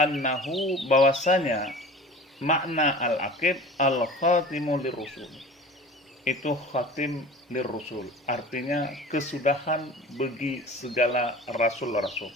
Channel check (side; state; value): both; normal; correlation 0.39